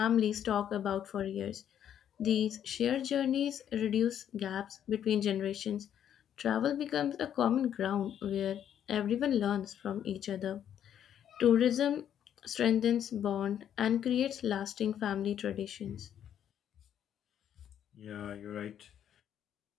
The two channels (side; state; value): right; quieter; 9.8 dB